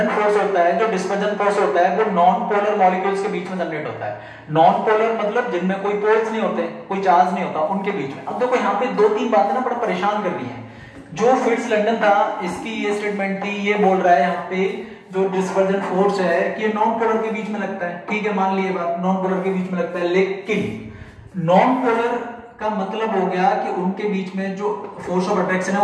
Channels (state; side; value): identical; both; correlation 1.00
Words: फोर्स होता है, जो डिस्पर्जन फोर्स होता है, वो नॉन पोलर मॉलिक्यूल्स के बीच में जनरेट होता है। नॉन पोलर मतलब जिनमें कोई पोल्स नहीं होते, कोई चार्ज नहीं होता, उनके बीच में। अब देखो यहाँ पे दो तीन बातें ना बड़ा परेशान कर रही है। जो फिट्ज लंडन था, इसकी ये स्टेटमेंट थी, ये बोल रहा है यहाँ पे जो डिस्पर्जन फोर्स है कि ये नॉन पोलर के बीच में लगता है, ठीक है, मान लिए बात, नॉन पोलर के बीच में लगता है। लेकिन नॉन पोलर का मतलब हो गया कि उनके बीच में जो फोर्स ऑफ अट्रैक्शन है